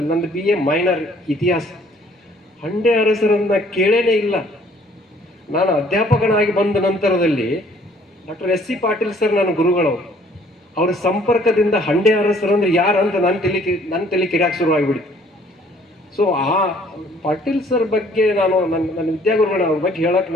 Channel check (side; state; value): both; normal; correlation 0.59